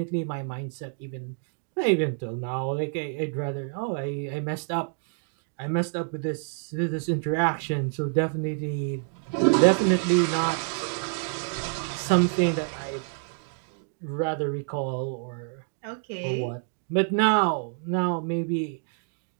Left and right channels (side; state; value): left; silent; 60 dB below the other